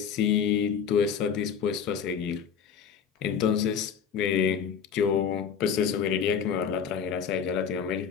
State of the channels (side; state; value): right; quieter; 7.3 dB